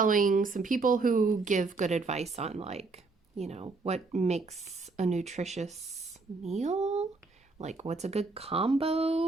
some people who give good advice on like, what makes a nutritious meal, like what's a good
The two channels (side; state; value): left; quieter; 3.9 dB